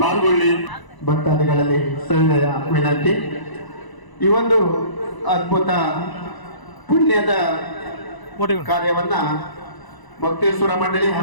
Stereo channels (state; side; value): late; right; 1.0 ms